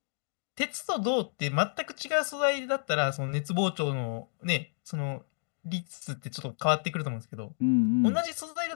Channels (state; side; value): silent; right; digital silence